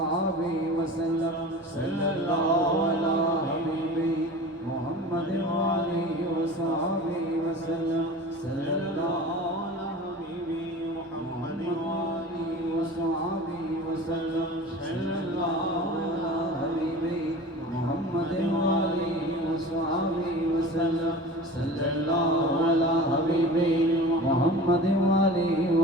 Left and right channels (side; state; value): both; normal; correlation 0.37